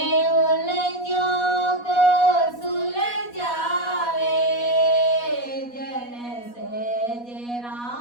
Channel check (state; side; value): late; right; 4.1 ms